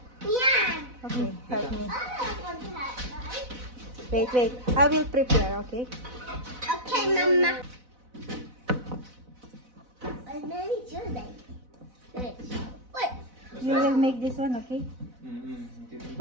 Yeah. Okay, help me. I don't want to have, right? Wait. I will prepare, okay? Okay, Mama. I made sure that. Wait. You will make this one, okay? Okay.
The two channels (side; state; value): left; late; 4.0 ms